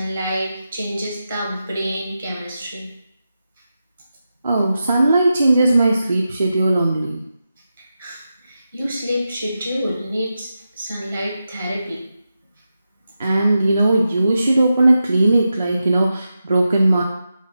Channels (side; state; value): both; inverted; correlation -0.90